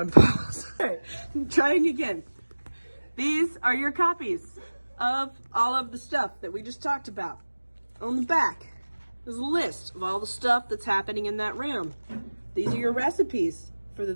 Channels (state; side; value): inverted; both; correlation -1.00